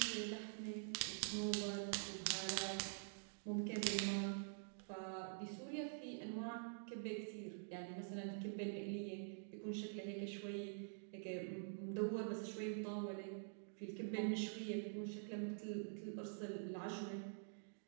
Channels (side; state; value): left; silent; digital silence